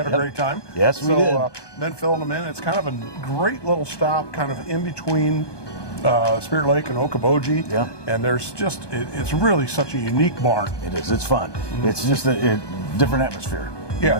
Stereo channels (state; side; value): late; right; 1.2 ms